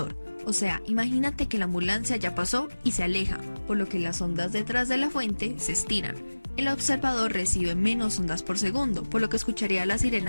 O sea, imagínate que la ambulancia ya pasó y se aleja, por lo que las ondas detrás de la fuente se estiran. El observador recibe menos ondas por segundo, por lo que escucharía la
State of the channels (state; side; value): inverted; both; correlation -1.00